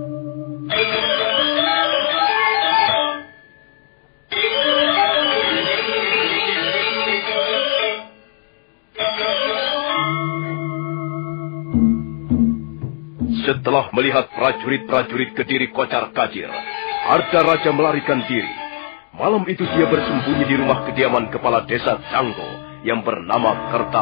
Setelah melihat prajurit-prajurit Kediri kocar kacir, Arda Raja melarikan diri. Malam itu dia bersembunyi di rumah kediaman kepala desa Canggo yang bernama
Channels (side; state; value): right; silent; 67 dB below the other